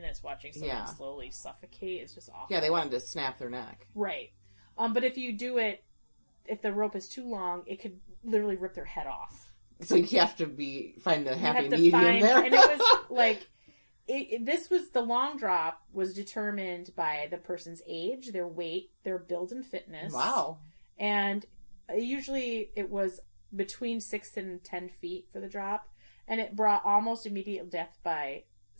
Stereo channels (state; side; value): inverted; both; correlation -1.00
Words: watching someone slowly suffocate. It's just awful. Yeah, they wanted to snap their neck. Right. But if you do it, if the rope is too long, it could literally rip their head off. So you have to find the happy medium there. And it was like, the long drop was determined by the person's age, their weight, their build and fitness. Wow. And usually it was between 6 and 10 feet for the drop. And it brought almost immediate death by